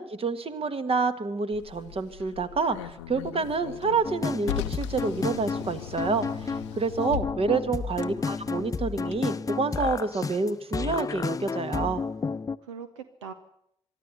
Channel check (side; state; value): both; normal; correlation 0.48